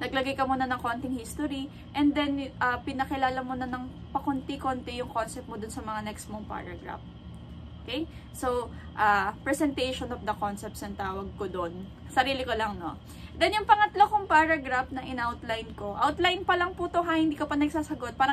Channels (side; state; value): both; identical; correlation 1.00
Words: naglagay ka muna ng konting history and then pinakilala mo na ng pakunti-konti yung concept mo dun sa mga next mong paragraph. Okay? So, presentation of the concepts ang tawag ko dun. Sarili ko lang, no? Then, yung pangatlo kong paragraph na in-outline ko, outline pa lang po to ha, hindi ka pa nagsasagot.